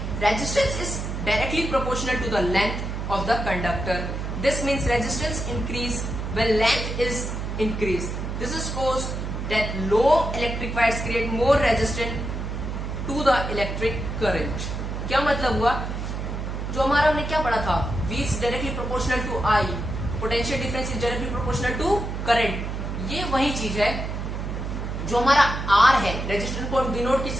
Resistance is directly proportional to the length of the conductor. This means resistance increase when length is increased. This is caused that long electric wires create more resistance to the electric current. क्या मतलब हुआ? जो हमारा हमने क्या पढ़ा था, V is directly proportional to I, potential difference is directly proportional to current. ये वही चीज है जो हमारा R है, रेजिस्टेंस को डिनोट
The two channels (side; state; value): right; noise; hum, 4 dB below the sound